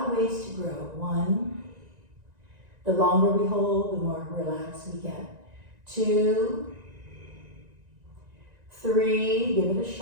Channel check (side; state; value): left; late; 1.9 ms